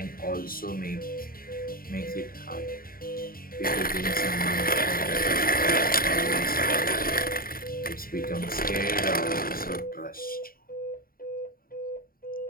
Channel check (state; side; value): late; right; 0.42 ms